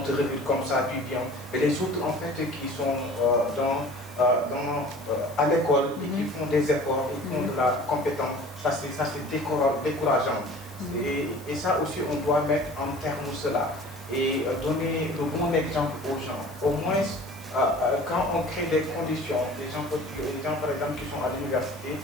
te révèle comme ça, puis bien. Mais les autres en fait qui sont à l'école et qui font des efforts, ils font de la compétence, ça c'est décourageant. Et ça aussi, on doit mettre en terme cela et donner le bon exemple aux gens. Au moins, quand on crée des conditions, les gens par exemple qui sont à l'université,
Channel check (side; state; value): left; noise; hiss, 23 dB below the sound